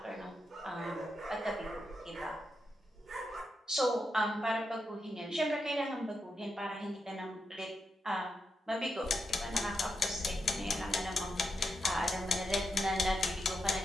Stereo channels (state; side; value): normal; both; correlation 0.85